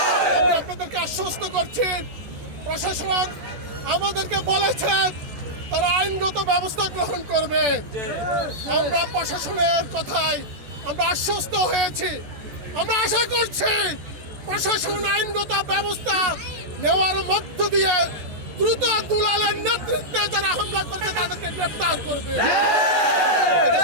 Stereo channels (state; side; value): late; left; 14 ms